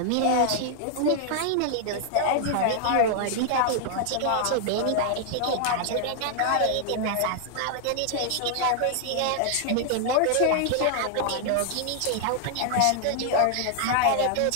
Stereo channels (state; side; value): different; both; correlation 0.00